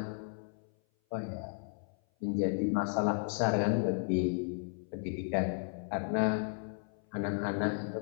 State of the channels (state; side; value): silent; right; 55 dB below the other